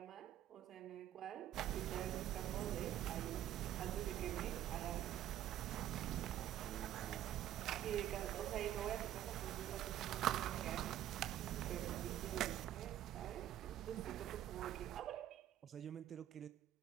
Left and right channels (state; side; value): quieter; left; 12.3 dB